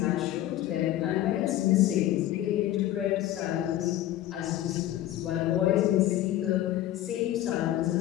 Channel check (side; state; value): right; quieter; 13.5 dB